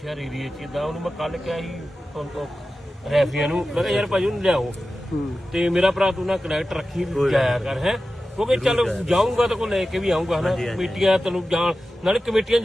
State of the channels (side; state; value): both; normal; correlation 0.93